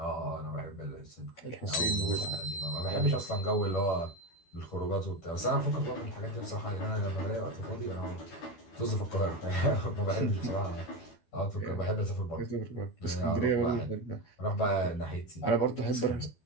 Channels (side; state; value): right; late; 12 ms